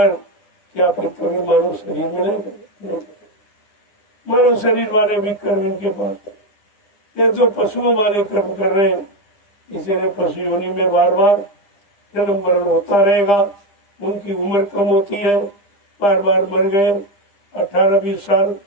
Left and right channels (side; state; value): right; late; 9.9 ms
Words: क्या फिर कभी मानव शरीर मिलेगा? नहीं। मानव शरीर वाले भी कर्म इनके पास, ये तो पशुओं वाले कर्म कर रहे हैं, इसीलिए पशु योनि में बार बार जन्म मरण होता रहेगा। उनकी उम्र कम होती है, बार बार मर गए, 18-20 साल,